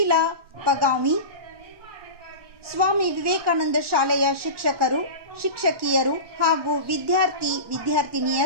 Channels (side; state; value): left; late; 1.1 ms